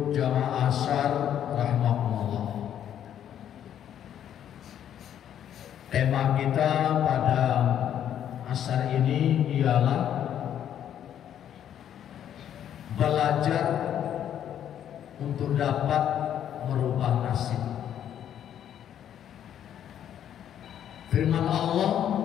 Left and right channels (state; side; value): quieter; right; 10.0 dB